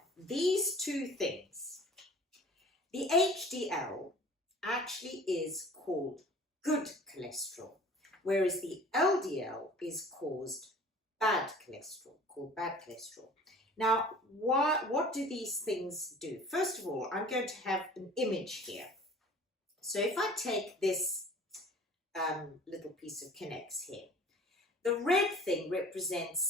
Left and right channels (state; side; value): normal; both; correlation 0.46